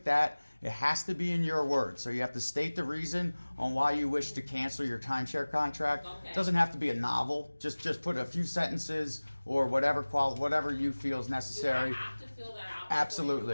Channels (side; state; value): both; inverted; correlation -1.00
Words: that. It has to be in your words. So you have to state the reason on why you wish to cancel your timeshare contract. Okay. It doesn't have to be a novel. Just put a few sentences or whatever you feel is necessary. Do I have to fill that out before Absolutely.